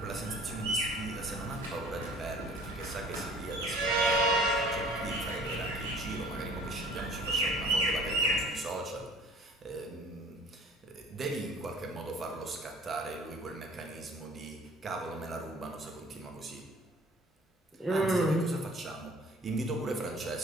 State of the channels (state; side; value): normal; both; correlation 0.51